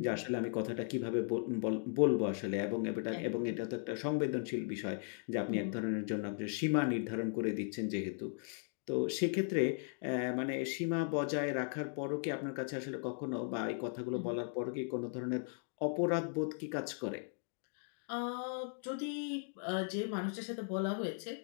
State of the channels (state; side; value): silent; right; 53 dB below the other